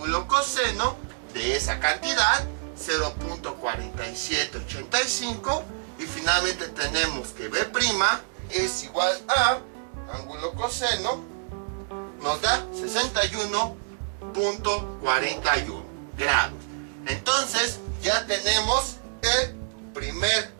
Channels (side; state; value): left; silent; 60 dB below the other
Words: coseno de esa cantidad, 0.4785. Y finalmente tenemos que B' es igual a ángulo coseno, nos da 61.41 grados. Entonces ya tenemos el primer